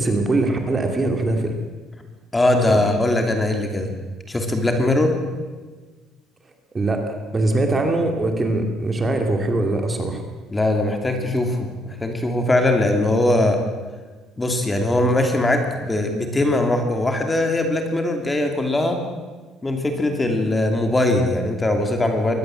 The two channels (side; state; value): both; normal; correlation 0.75